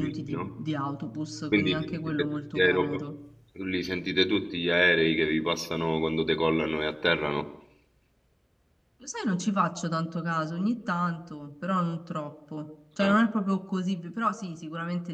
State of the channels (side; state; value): both; identical; correlation 1.00